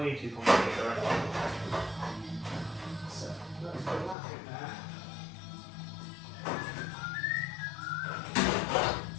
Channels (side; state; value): right; drops out; at 4.2 s